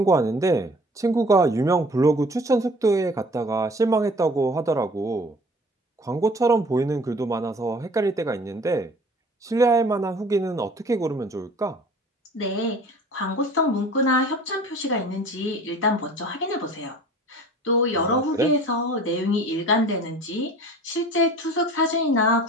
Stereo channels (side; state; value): both; normal; correlation 0.46